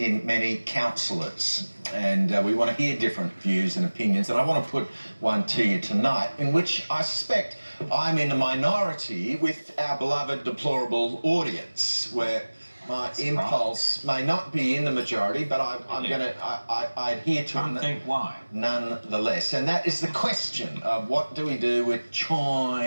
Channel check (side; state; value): both; inverted; correlation -1.00